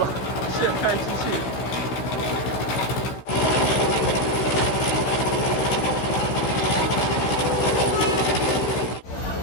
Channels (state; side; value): late; right; 15 ms